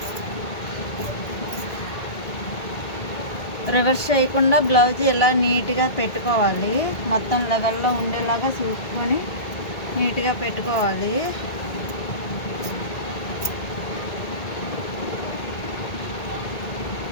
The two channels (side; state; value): right; late; 1.8 ms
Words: రివర్స్ చేయకుండా బ్లౌజ్ ఇలా నీట్గా పెట్టుకోవాలి. మొత్తం లెవెల్లో ఉండేలాగా చూసుకొని నీట్గా పెట్టుకోవాలి.